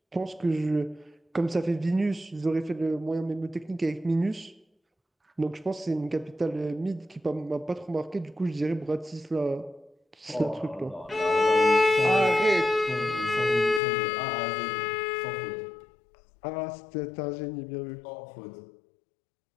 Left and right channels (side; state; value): right; drops out; at 13.8 s